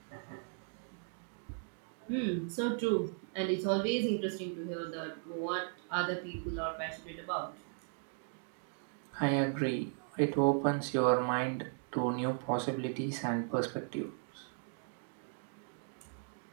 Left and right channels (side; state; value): left; silent; 53 dB below the other